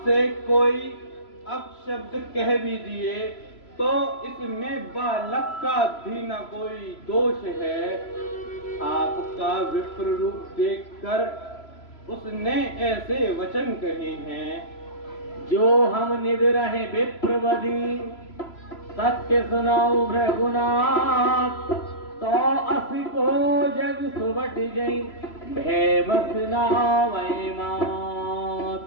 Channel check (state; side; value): late; right; 3.0 ms